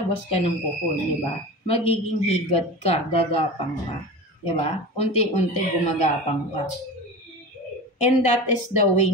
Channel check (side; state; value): both; normal; correlation 0.31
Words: ka ng kukun, di ba? Magiging higad ka, gagapang ka. Di ba? Unti-unti gumagapang ka. And that is the way